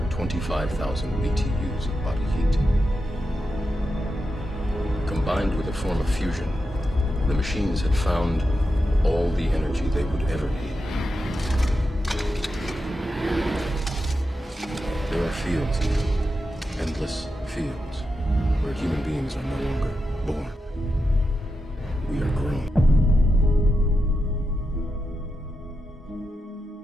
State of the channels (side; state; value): both; normal; correlation 0.88